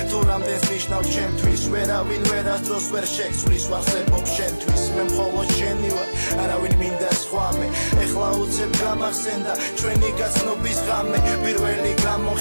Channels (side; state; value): both; inverted; correlation -1.00